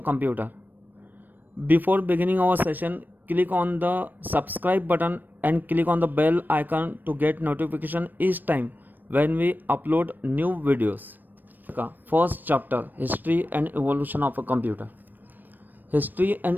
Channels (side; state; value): left; late; 0.090 ms